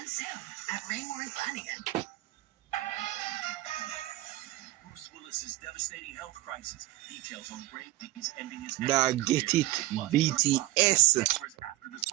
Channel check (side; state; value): left; quieter; 17.9 dB